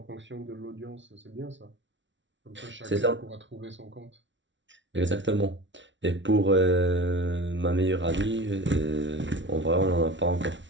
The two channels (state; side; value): late; left; 0.55 ms